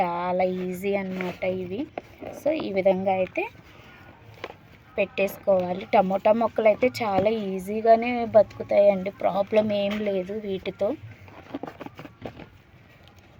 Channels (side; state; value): both; identical; correlation 1.00